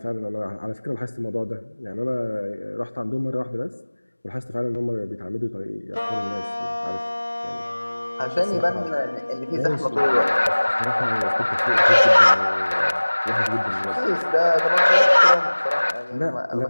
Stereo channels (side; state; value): both; inverted; correlation -1.00